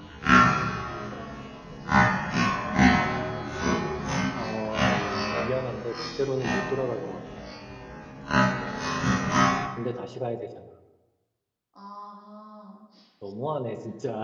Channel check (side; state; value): both; identical; correlation 1.00